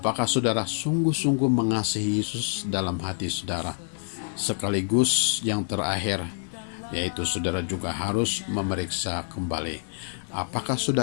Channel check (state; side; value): silent; right; 60 dB below the other